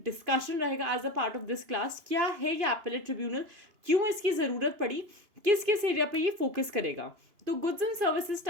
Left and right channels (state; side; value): late; left; 2.9 ms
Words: डिस्कशन रहेगा as a part of this class, क्या है ये एपेलेट ट्रिब्यूनल, क्यों इसकी ज़रूरत पड़ी, किस किस एरिया पे ये फोकस करेगा। तो गुड्स एंड सर्विसेज